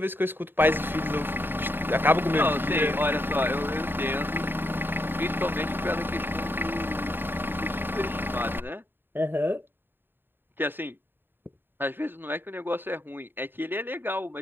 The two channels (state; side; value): late; left; 0.097 ms